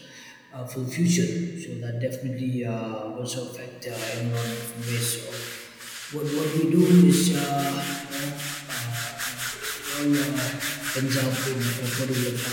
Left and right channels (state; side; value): identical; both; correlation 1.00